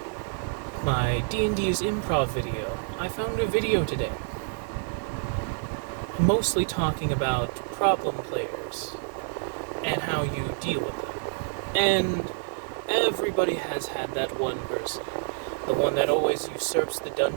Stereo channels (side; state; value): left; silent; digital silence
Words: my D&D's improv video. I found a video today, mostly talking about problem players and how you deal with them. And everybody has had that one person, the one that always usurps the